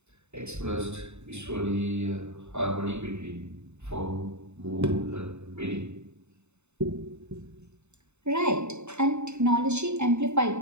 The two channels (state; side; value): late; left; 0.82 ms